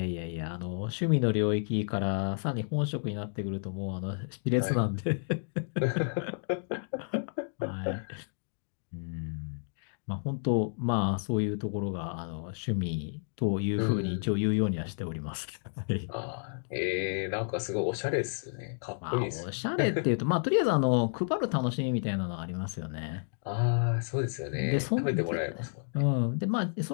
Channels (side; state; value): right; silent; digital silence